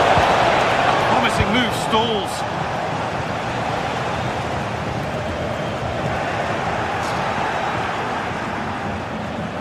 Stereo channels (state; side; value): identical; both; correlation 1.00